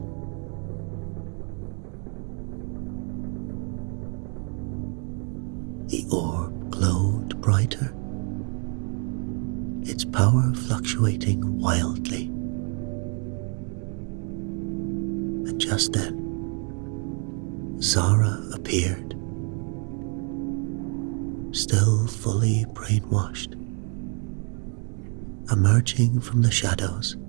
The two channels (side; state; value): left; quieter; 39.1 dB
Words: The orb glowed brighter, its power fluctuating wildly. And just then, Zara appeared, still fully brainwashed, emerging from the shadows,